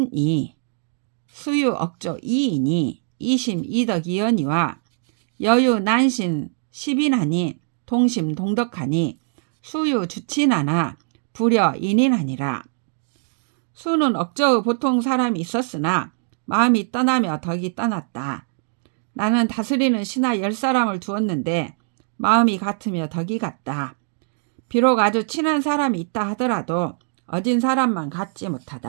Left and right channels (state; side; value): silent; left; digital silence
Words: 이심 이덕이언이와 여유 난신 10인하니 동심 동덕하니 수유 주친하나 불여 인인하니라. 수는 억저의 보통 사람이 있었으나 마음이 떠나며 덕이 떠났다. 나는 다스리는 신하 10사람을 두었는데 마음이 같으며 덕이 같다. 비록 아주 친한 사람이 있다 하더라도 어진 사람만 같지